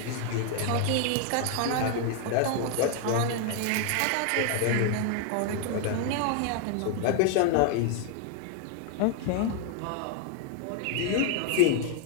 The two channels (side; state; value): both; different; correlation 0.00